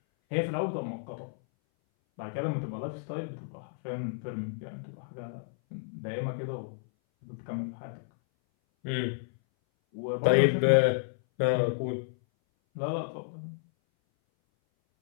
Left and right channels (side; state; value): right; silent; 57 dB below the other